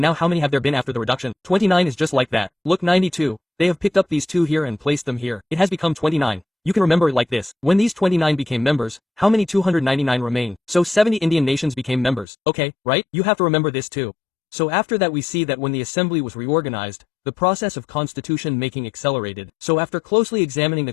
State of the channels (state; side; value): drops out; right; at 12.2 s